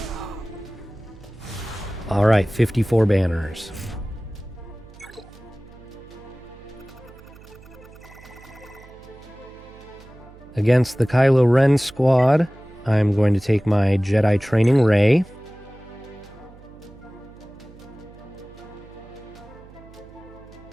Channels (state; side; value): noise; right; hum, 21 dB below the sound